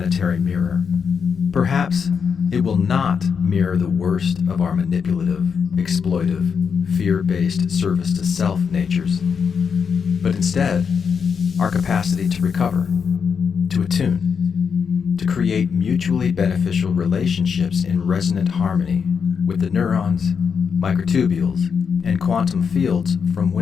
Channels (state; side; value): quieter; right; 6.4 dB